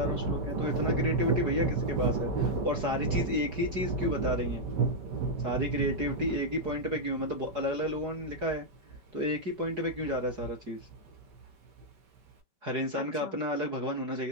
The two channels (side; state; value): left; late; 5.2 ms